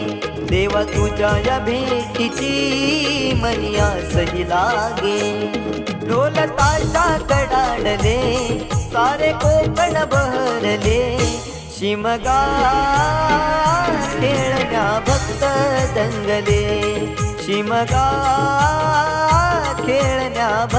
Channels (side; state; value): both; identical; correlation 1.00